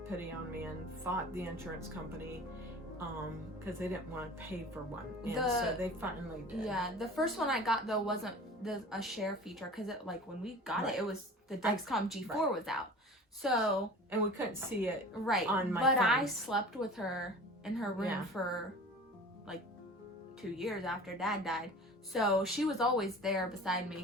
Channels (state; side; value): normal; both; correlation 0.40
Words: pity on me and fought the insurance company, because they didn't want to pay for one, and so they finally did. Yeah, the first one I got though wasn't a share feature, because it, like, when we got it was the Dexcom G4 was out, so and we couldn't see it on my phone. I slept with her in her room Yeah. for like 2 years after Dad died, so she was always there beside